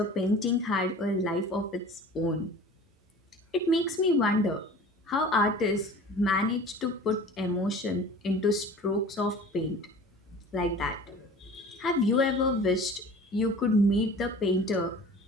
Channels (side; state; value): both; normal; correlation 0.42